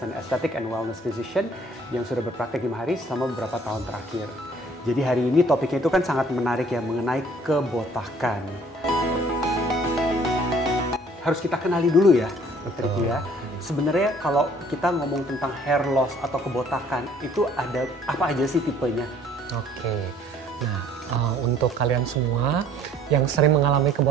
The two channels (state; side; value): normal; both; correlation 0.57